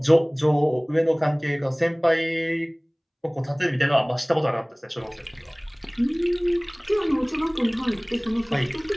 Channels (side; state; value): both; identical; correlation 1.00